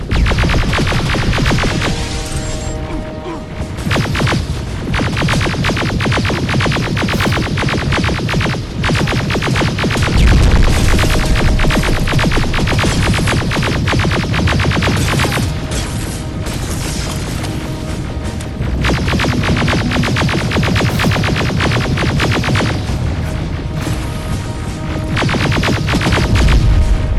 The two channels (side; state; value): both; identical; correlation 1.00